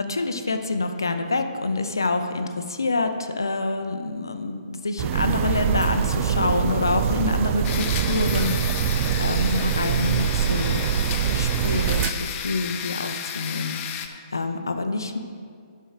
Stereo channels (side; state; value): both; inverted; correlation -0.57